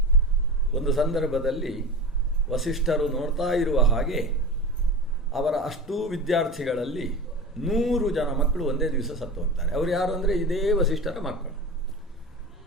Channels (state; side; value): normal; both; correlation 0.30